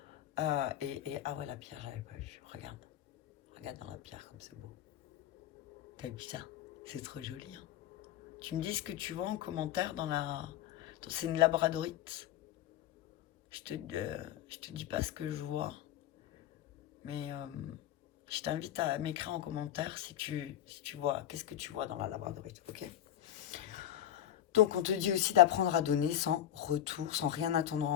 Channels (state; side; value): quieter; right; 11.5 dB